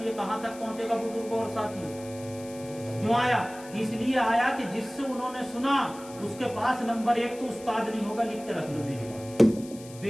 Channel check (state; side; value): noise; left; hiss, 19 dB below the sound